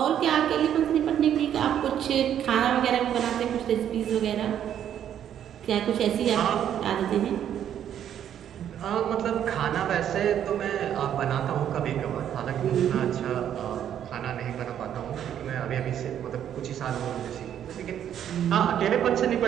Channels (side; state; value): left; quieter; 9.9 dB